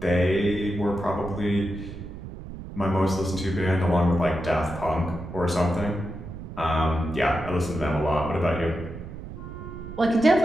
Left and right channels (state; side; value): noise; right; rumble, 11 dB below the sound